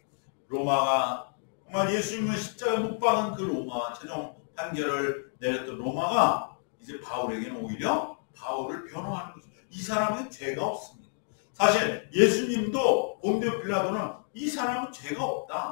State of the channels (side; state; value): right; silent; 58 dB below the other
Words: 로마가 정말 예수님을 십자가에 못 박은 그 로마, 최종 판결을 내렸던 로마가 이제 바울에게는 오히려 바울을 변호하는 거죠. 이 사람은 죄가 없습니다. 사실 예수님도 본디오 빌라도는 이 사람은 죄가